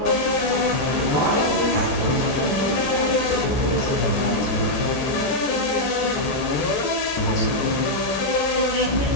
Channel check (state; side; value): late; right; 14 ms